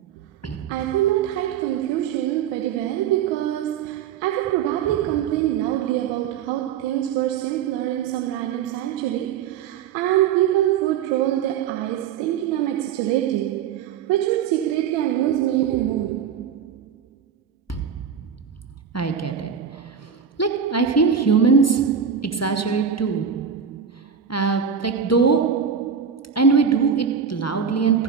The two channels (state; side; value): quieter; left; 7.5 dB